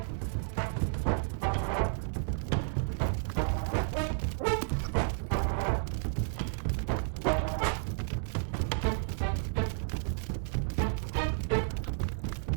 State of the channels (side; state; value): left; silent; digital silence